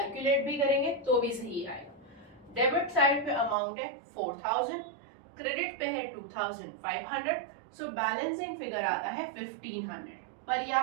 भी करेंगे तो भी सही आएगा। डेबिट साइड पे अमाउंट है 4000, क्रेडिट पे है 2500, सो बैलेंसिंग फिगर आता है 1500। पर ये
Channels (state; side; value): drops out; left; at 3.6 s